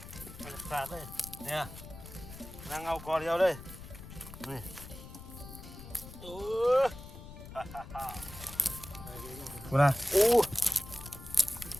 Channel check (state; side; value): noise; left; rumble, 14 dB below the sound